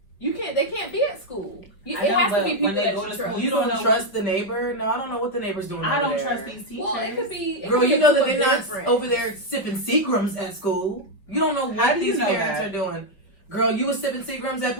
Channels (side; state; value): right; late; 4.9 ms